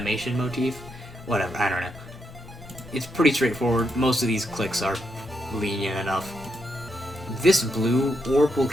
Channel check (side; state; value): both; normal; correlation 0.81